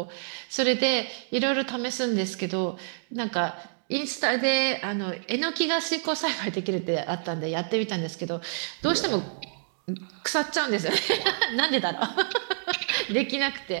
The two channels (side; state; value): left; silent; digital silence